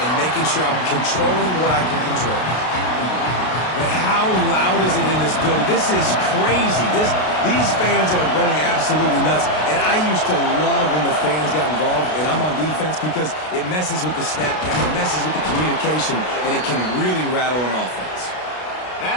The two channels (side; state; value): right; late; 33 ms